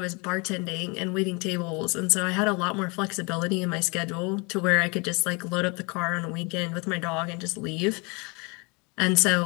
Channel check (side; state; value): right; quieter; 29.7 dB